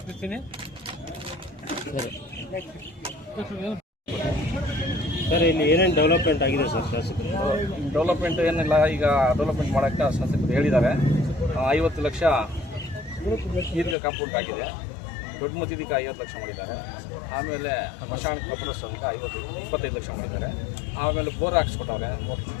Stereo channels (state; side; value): drops out; right; at 14.0 s